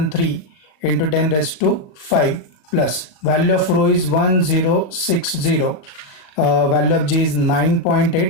into 10 raised to 5 plus value of rho is 1060, value of G is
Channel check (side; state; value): right; late; 38 ms